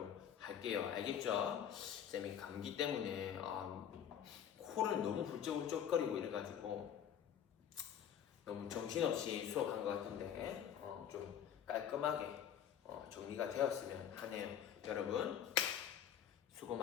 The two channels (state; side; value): quieter; right; 9.1 dB